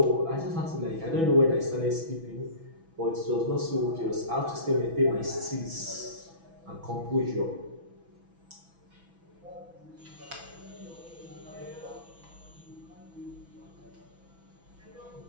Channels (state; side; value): late; left; 6.1 ms